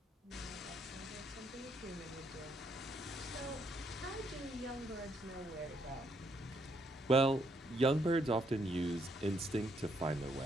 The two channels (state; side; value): normal; both; correlation 0.73